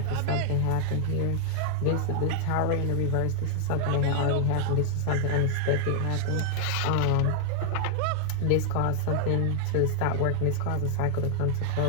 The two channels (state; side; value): different; both; correlation 0.00